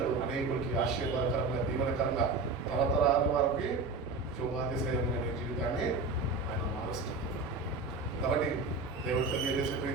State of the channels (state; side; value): quieter; left; 3.7 dB